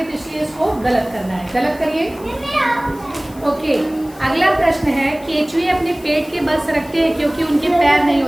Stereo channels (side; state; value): left; noise; hiss, 23 dB below the sound